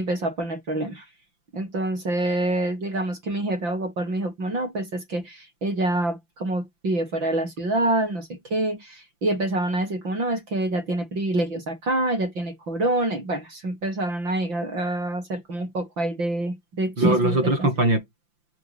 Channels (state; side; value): late; left; 5.8 ms